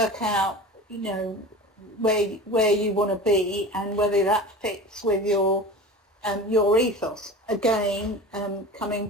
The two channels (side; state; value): both; normal; correlation 0.34